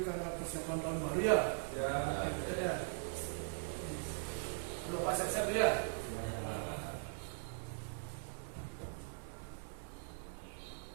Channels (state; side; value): silent; left; 51 dB below the other